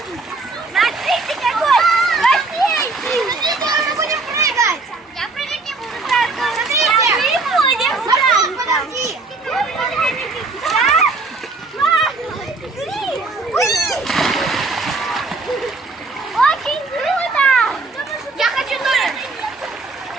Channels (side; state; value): left; quieter; 3.6 dB